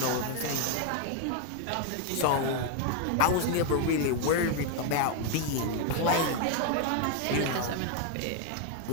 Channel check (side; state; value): both; different; correlation 0.00